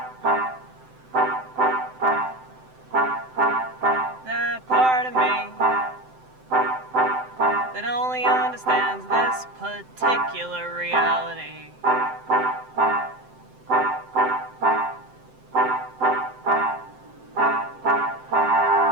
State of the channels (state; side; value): late; left; 7.8 ms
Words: That part of me that only understands this particular reality.